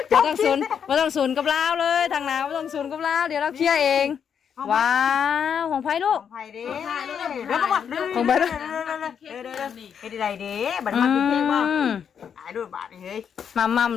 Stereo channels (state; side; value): quieter; right; 7.7 dB